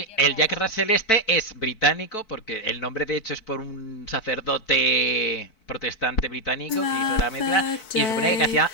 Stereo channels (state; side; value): late; right; 4.5 ms